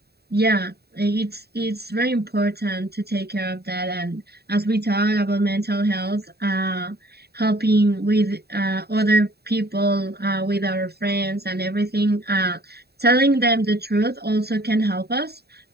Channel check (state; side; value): late; left; 0.47 ms